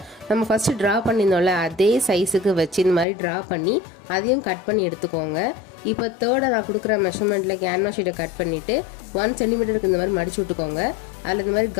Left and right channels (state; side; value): drops out; right; at 3.1 s